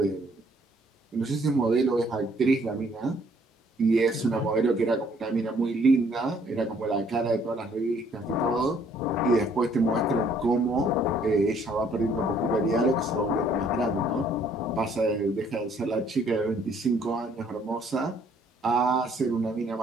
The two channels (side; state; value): both; normal; correlation 0.63